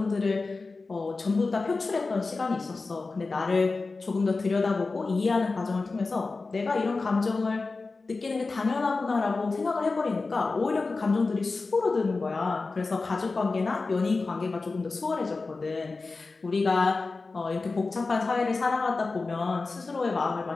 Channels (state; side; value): quieter; right; 3.8 dB